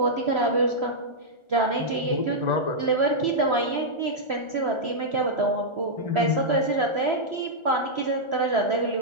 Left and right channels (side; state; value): left; late; 1.4 ms